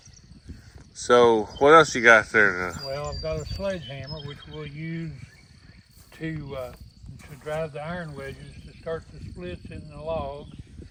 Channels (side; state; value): both; identical; correlation 1.00